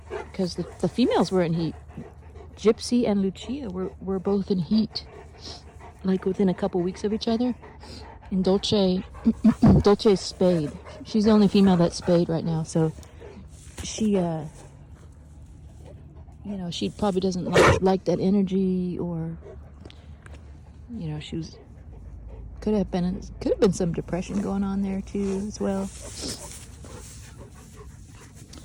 because the females were in heat. Gypsy and Lucia were both in heat, like within a couple weeks of each other. And Dolce's spayed. She's the only female that's spayed right now, so she, you know, she probably doesn't like that energy, or, you know, could have been some depression going on there too as well.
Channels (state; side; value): identical; both; correlation 1.00